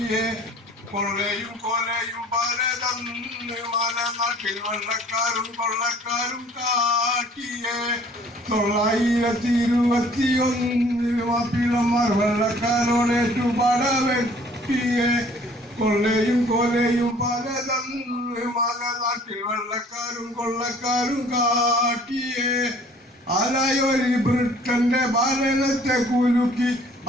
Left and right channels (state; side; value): normal; both; correlation 0.54